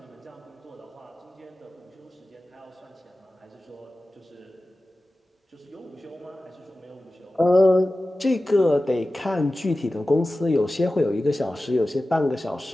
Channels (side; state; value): both; normal; correlation 0.95